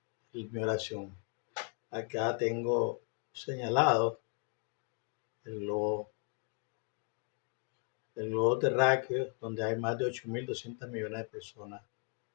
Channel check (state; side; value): quieter; right; 38.2 dB